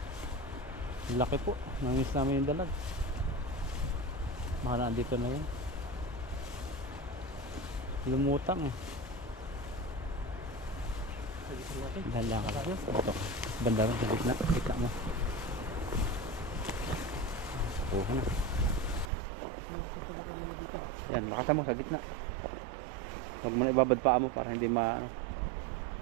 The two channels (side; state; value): left; drops out; at 19.1 s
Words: Laki po. Namiss namin yung dalag. Baka nandito na yun. Lumutang eh. Sagitan natin. Dahan ka lang. Ito. Banda rin sa gitna. Gitna mo. Kuha na. Yan, lakasan mo sa gitna. Huwag mo na ibabad paa mo para hindi ano.